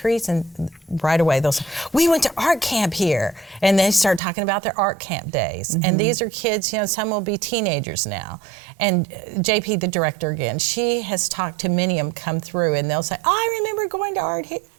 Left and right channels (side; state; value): left; drops out; at 4.2 s